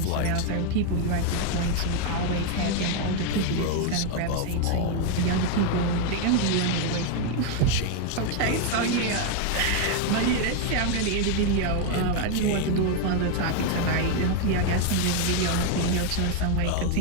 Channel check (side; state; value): both; different; correlation 0.01